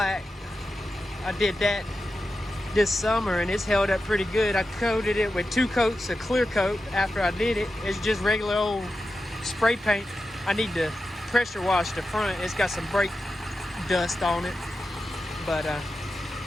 I did that this summer, and it's held up pretty good. I coated it with 2 coats of clear coat after I did it. It's just regular old spray paint. I need to pressure wash the front. It's got some brake dust on it, but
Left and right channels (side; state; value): both; normal; correlation 0.91